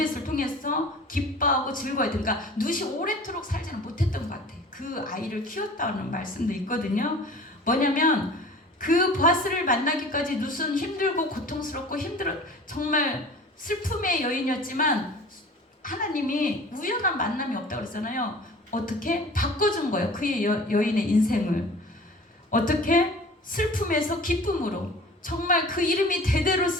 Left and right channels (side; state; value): both; normal; correlation 0.43